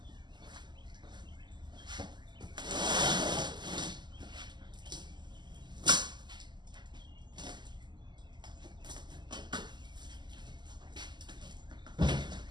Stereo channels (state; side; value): late; left; 0.21 ms